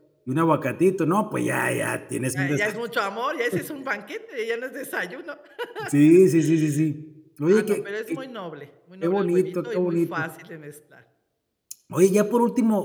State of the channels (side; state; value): both; identical; correlation 1.00